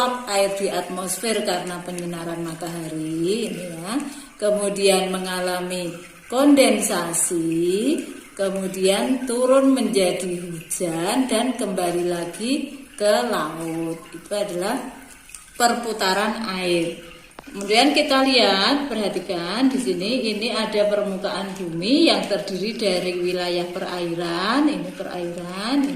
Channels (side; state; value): both; identical; correlation 1.00